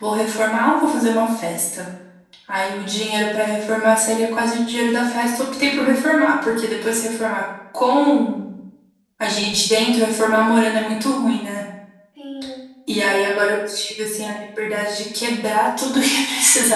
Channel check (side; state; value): both; identical; correlation 1.00